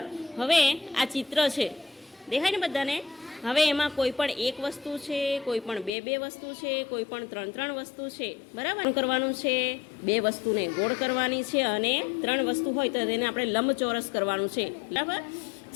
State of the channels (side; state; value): right; drops out; at 5.9 s